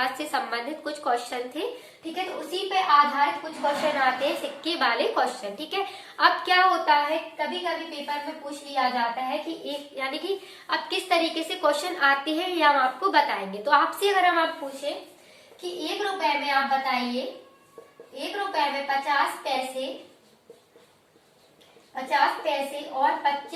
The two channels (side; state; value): both; identical; correlation 1.00